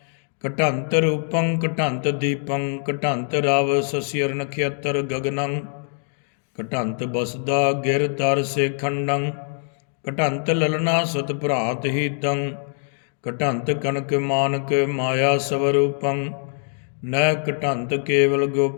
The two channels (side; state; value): right; silent; 63 dB below the other